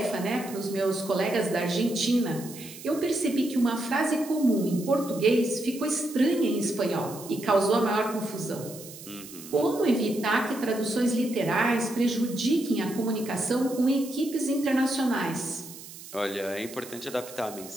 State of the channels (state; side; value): noise; right; hiss, 15 dB below the sound